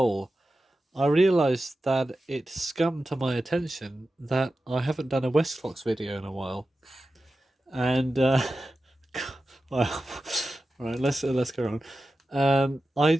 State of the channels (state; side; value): normal; both; correlation 0.93